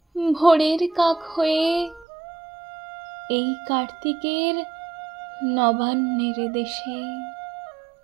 ভোরের কাক হয়ে এই কার্তিকের নবান্নের দেশে।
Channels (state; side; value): drops out; left; at 2.1 s